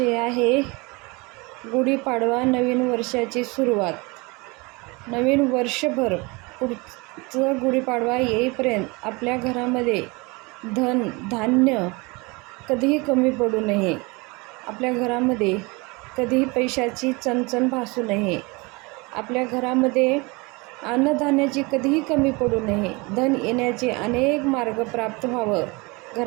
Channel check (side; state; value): left; quieter; 26.3 dB